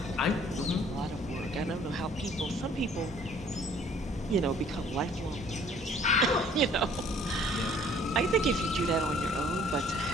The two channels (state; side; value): normal; both; correlation 0.56